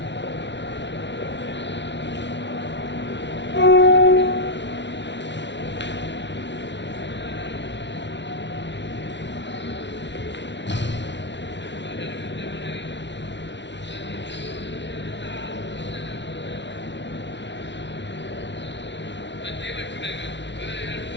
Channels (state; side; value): late; right; 0.52 ms